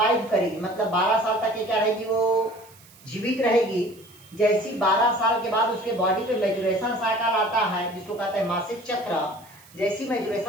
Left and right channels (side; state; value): right; noise; hiss, 25 dB below the sound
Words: करेगी, मतलब 12 साल तक ये क्या रहेगी, वो जीवित रहेगी। जैसी 12 साल के बाद उसके बॉडी पे मैचुरेशन साइकिल आता है, जिसको कहते हैं मासिक चक्र, जैसी